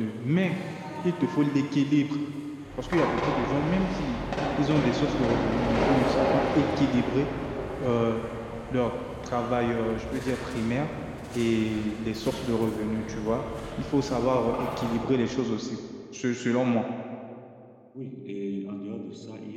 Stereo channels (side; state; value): both; identical; correlation 1.00